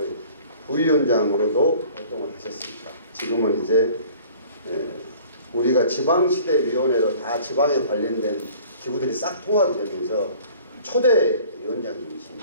부위원장으로도 활동을 하셨습니다. 지금은 이제 우리가 지방시대위원회로 다 지방에 관련된 기구들이 싹 통합이 되면서 초대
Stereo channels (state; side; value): inverted; both; correlation -0.50